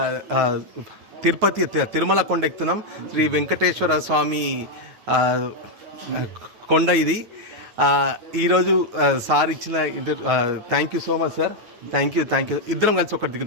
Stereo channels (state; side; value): late; left; 9.4 ms